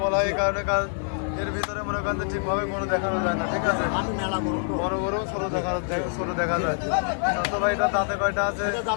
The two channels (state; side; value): silent; right; 59 dB below the other